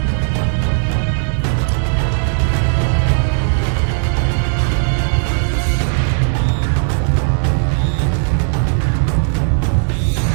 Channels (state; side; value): silent; left; 58 dB below the other